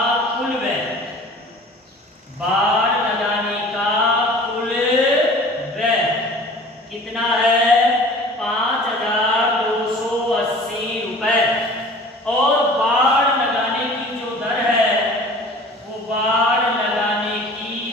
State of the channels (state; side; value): normal; both; correlation 0.45